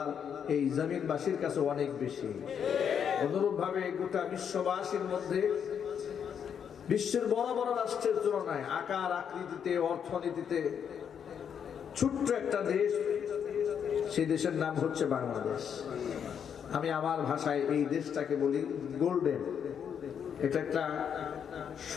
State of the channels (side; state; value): right; quieter; 7.9 dB